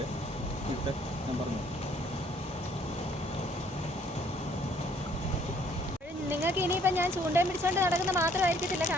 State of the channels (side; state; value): both; normal; correlation 0.62